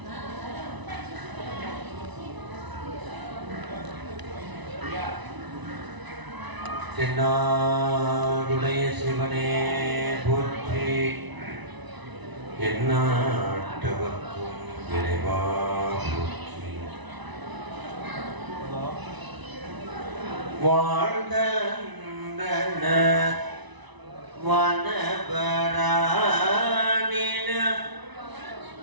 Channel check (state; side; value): late; left; 1.0 ms